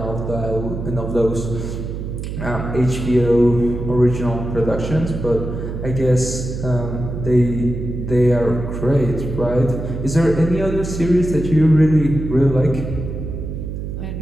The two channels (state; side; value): noise; right; hum, 6 dB below the sound